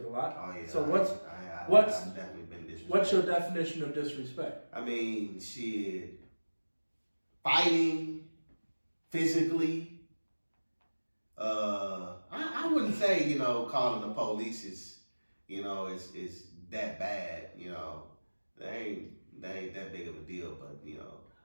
a lot. Oh yeah. So I've definitely been disrespected. what's your definition of disrespect? I mean, shit, fighting physically. I wouldn't say, you know, calling the police is, you know, is that bad. You know, they ain't that big of a deal. But you know,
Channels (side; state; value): both; inverted; correlation -1.00